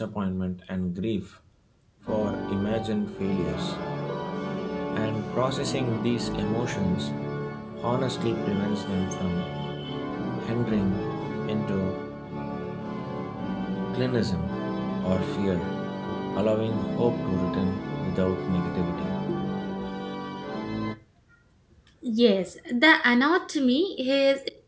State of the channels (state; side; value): identical; both; correlation 1.00